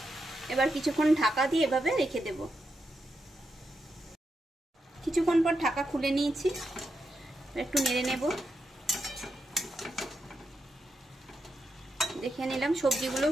এবার কিছুক্ষণ ঢাকা দিয়ে এভাবে রেখে দেব। কিছুক্ষণ পর ঢাকা খুলে নিয়েছি, একটু নেড়ে নেব। দেখে নিলাম সবজিগুলো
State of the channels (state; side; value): normal; both; correlation 0.85